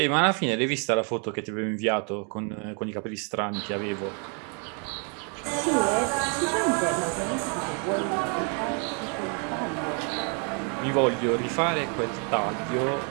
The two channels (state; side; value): quieter; left; 37.7 dB